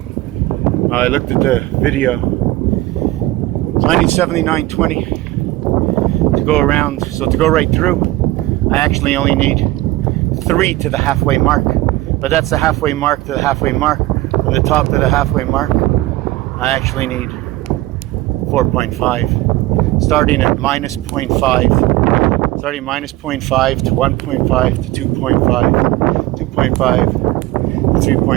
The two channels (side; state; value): left; quieter; 18.1 dB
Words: I looked at the video. So I need 79.20 to go around. So to go right through, I actually only need 3 to the halfway mark. But that's the halfway mark to the halfway mark. From the top to the halfway mark, I actually need 4.5. Starting at minus 0.5. Starting minus 0.5 to 1.5 to 2.5, 2.5 to